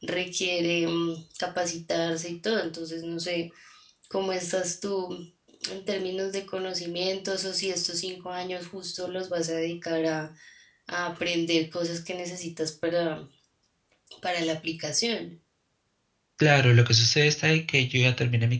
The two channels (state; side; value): identical; both; correlation 1.00